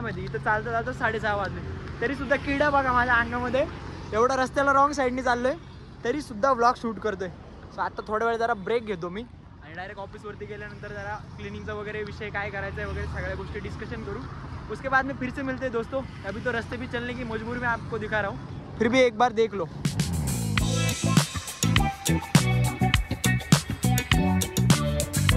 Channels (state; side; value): identical; both; correlation 1.00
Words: माहिती. इथं चालतं 6:30 वाजले तरीसुद्धा किडा बघा माझ्या अंगामध्ये. एवढा रस्त्याला रॉंग साईडनी चाललो आहे तरीसुद्धा व्लॉग शूट करतोय. सो आता थोड्या वेळ जरा ब्रेक घेतो मी आणि डायरेक्ट ऑफिसवरती गेल्यानंतर जरा क्लिनिंगचा वगैरे विषय काय करायचा आहे वगैरे सगळ्या गोष्टी डिस्कशन करू. उसके बाद में फिर से मिलते हैं दोस्तों. अभी तो रास्ते भी चलने की मजबूरी में आपको दिखा रहा हूँ, फिर भी एक बार देख लो.